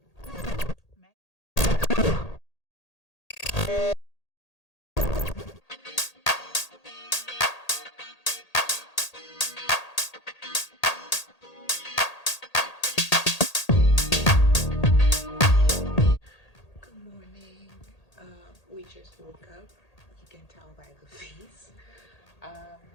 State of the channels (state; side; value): late; right; 1.8 ms